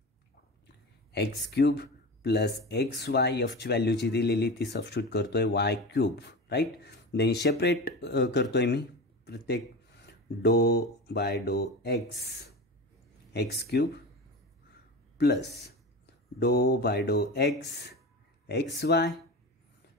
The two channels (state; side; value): normal; both; correlation 0.28